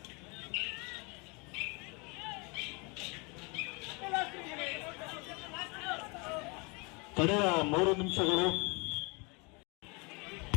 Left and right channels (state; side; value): quieter; right; 30.1 dB